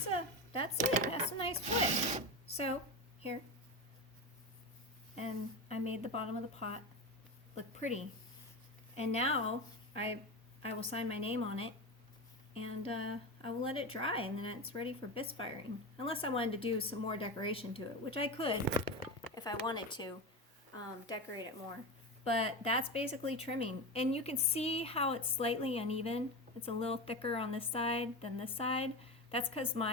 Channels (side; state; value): both; normal; correlation 0.20